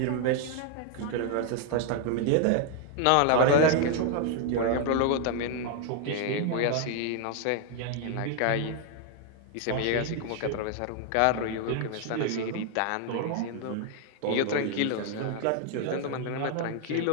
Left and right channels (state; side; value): different; both; correlation 0.00